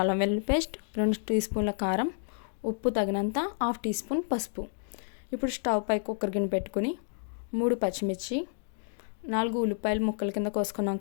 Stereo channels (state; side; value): silent; right; digital silence